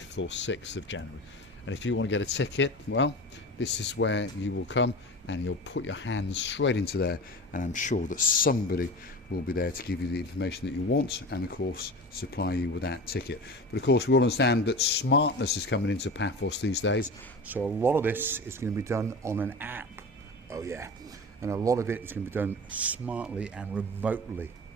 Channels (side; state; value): both; normal; correlation 0.32